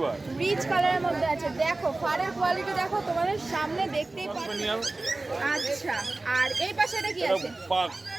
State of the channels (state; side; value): quieter; left; 3.1 dB